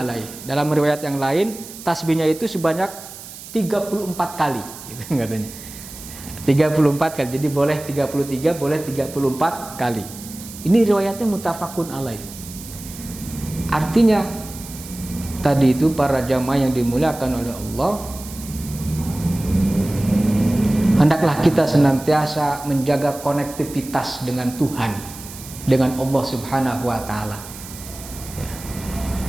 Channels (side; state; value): right; noise; hiss, 14 dB below the sound